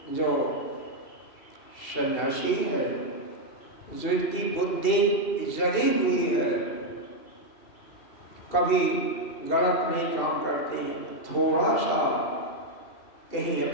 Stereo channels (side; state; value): right; late; 2.7 ms